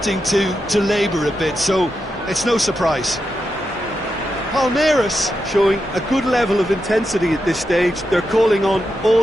to labour a bit, so it's no surprise. Palmeiras showing a good level of intensity at this stage. They're calling on all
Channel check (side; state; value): both; normal; correlation 0.87